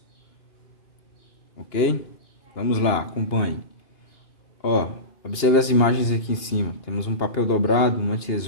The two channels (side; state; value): right; late; 2.8 ms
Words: Ok? Vamos lá, acompanhe. Ó, observe as imagens aqui em cima. Temos um papel dobrado, uma